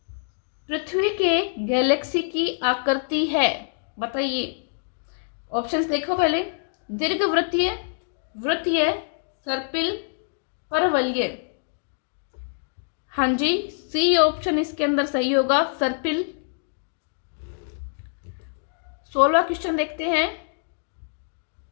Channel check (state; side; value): silent; right; digital silence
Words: पृथ्वी के गैलेक्सी की आकृति है? बताइए। ऑप्शंस देखो पहले, दीर्घवृत्तीय, वृत्तीय, सर्पिल, परवलय। हाँ जी, सी ऑप्शन इसके अंदर सही होगा, सर्पिल। 16वां क्वेश्चन देखते हैं,